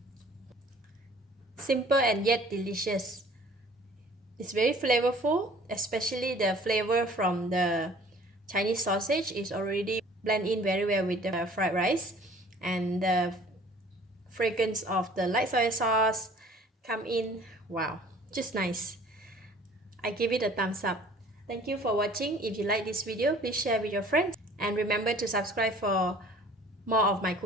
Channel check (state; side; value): normal; both; correlation 0.51